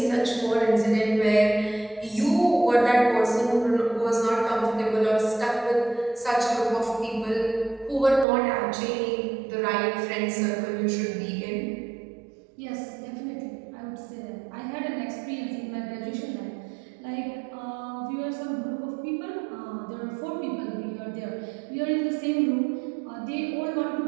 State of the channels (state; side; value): drops out; left; at 8.2 s